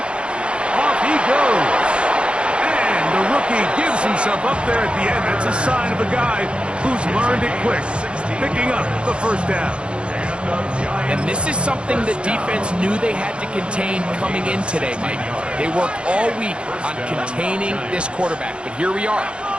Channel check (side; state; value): left; late; 0.056 ms